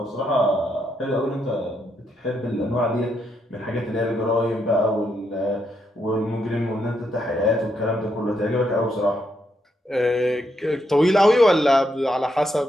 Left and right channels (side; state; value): both; normal; correlation 0.79